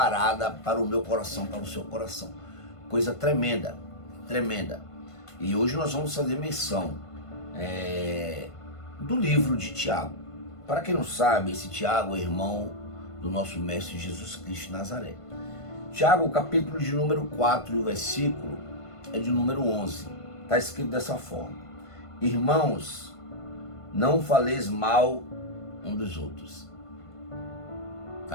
para o meu coração, para o seu coração. Coisa tremenda, tremenda. E hoje nós vamos fazer menção do livro de Tiago. Para quem não sabe, esse Tiago é irmão do nosso Mestre Jesus Cristo de Nazaré. Tiago, capítulo de número 4 e o versículo é de número 11. Está escrito dessa forma: irmãos, não faleis mal um dos outros.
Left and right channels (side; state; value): right; late; 1.5 ms